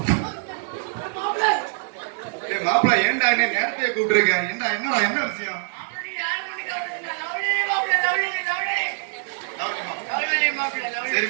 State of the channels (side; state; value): left; silent; 63 dB below the other